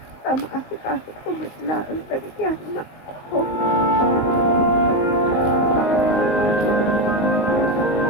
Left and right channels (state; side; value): late; right; 19 ms